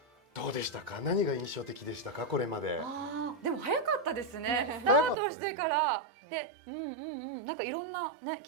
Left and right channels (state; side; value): drops out; left; at 5.2 s